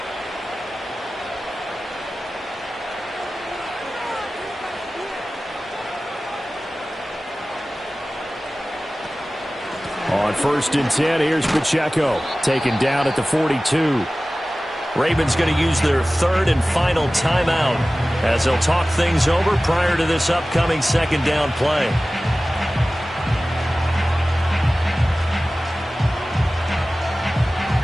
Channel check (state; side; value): normal; both; correlation 0.97